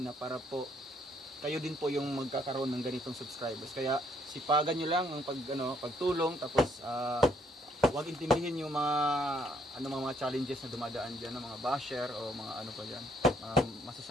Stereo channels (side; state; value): both; normal; correlation 0.68